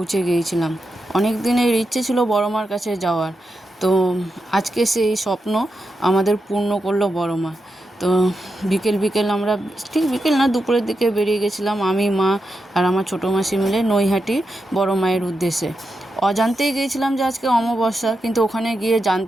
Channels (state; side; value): normal; both; correlation 0.87